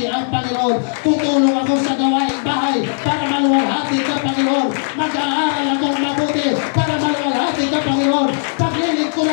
ang Panginoon. Tutulong ako sa gawaing bahay para maluwalhati ka, Panginoon. Mag-aaral akong mabuti para maluwalhati ka, Panginoon.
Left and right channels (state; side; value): silent; right; digital silence